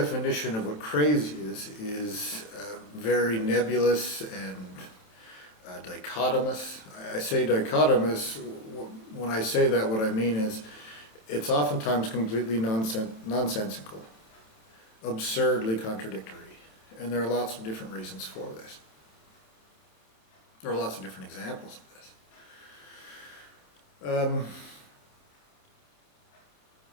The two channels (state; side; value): late; right; 27 ms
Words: of what crazy is very nebulous and dichotomous. I say dichotomous, when I say that what I mean is it's oftentimes completely nonsensical, absurdly contradictory, and there are lots of different reasons for this. There are lots of different examples of this.